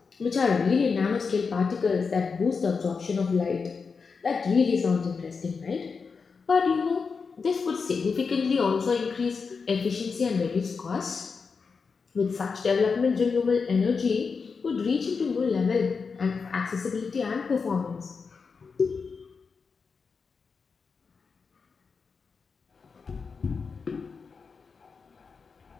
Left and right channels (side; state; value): right; quieter; 5.2 dB